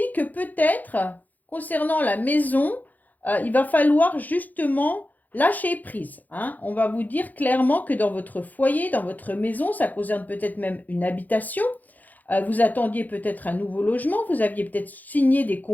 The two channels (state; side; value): late; right; 0.082 ms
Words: que peut-être, concernant la maison, il va falloir justement lâcher prise, hein. On va vous dire clairement que dans votre foyer, dans votre maison, ça concerne peut-être même une habitation. Vous attendiez peut-être un nouveau logement, vous aviez peut-être signé des